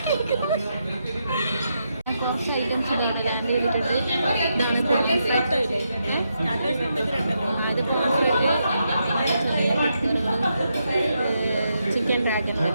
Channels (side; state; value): both; inverted; correlation -0.82